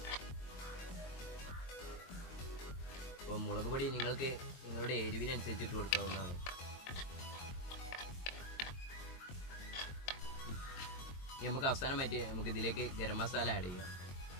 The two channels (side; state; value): right; late; 22 ms